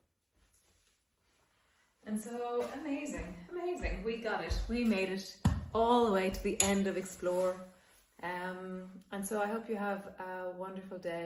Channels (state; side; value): identical; both; correlation 1.00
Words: And so amazing, amazing. We got it. We made it all the way to the end of Explore. And so I hope you have a wonderful